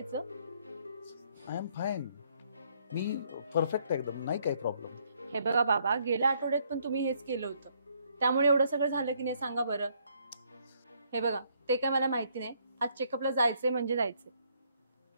I am fine. Me perfect एकदम, नाही काही प्रॉब्लेम. हे बघा बाबा, गेल्या आठवड्यात पण तुम्ही हेच केलं होतं, त्यामुळे एवढं सगळं झालं की नाही सांगा बरं. हे बघा, ते काय मला माहिती नाही. आज चेकअपला जायचंय म्हणजे जायचंय.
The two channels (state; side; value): inverted; both; correlation -0.69